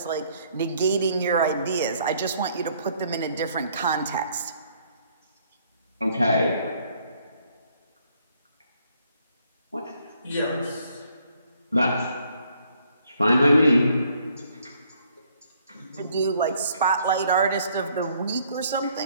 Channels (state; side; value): inverted; both; correlation -0.66